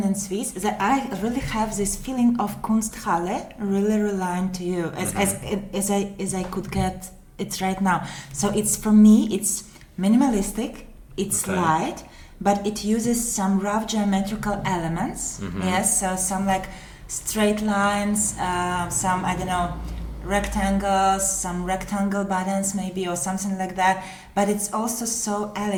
and Swiss. That I really have this feeling of Kunsthalle really relying to you as I could get it right now. So it's for me it's minimalistic, it's light, but it uses some rough geometrical elements. Yes, so some like straight lines, some rectangles, some rectangle buttons maybe or something like that. But it's also so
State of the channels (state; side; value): identical; both; correlation 1.00